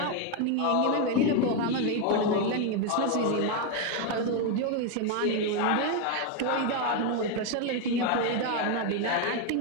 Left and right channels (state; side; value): different; both; correlation 0.02